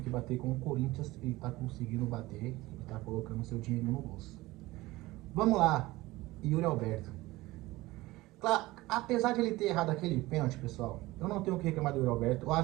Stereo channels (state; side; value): quieter; left; 19.3 dB